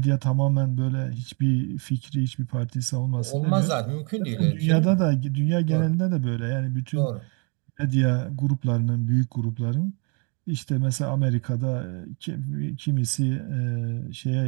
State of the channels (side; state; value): left; quieter; 34.9 dB